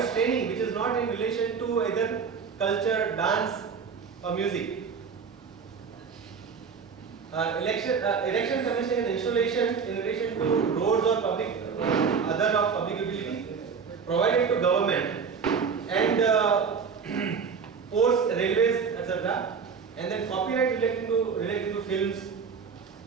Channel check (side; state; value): left; quieter; 5.9 dB